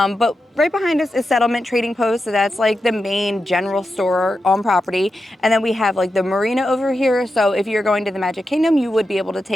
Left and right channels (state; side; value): normal; both; correlation 0.89